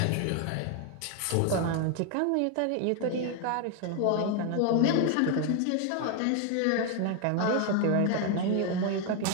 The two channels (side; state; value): both; different; correlation 0.01